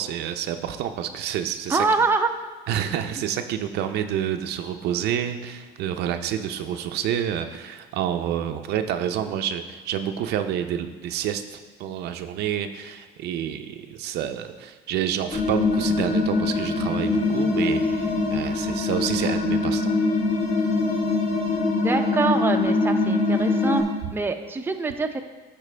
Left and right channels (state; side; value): normal; both; correlation 0.48